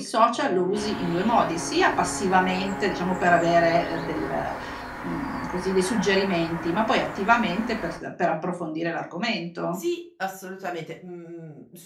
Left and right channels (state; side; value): identical; both; correlation 1.00